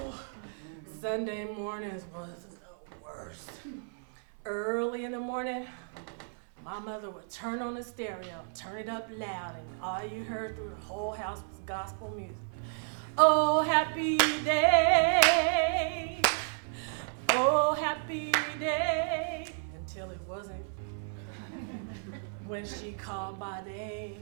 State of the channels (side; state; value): left; silent; 56 dB below the other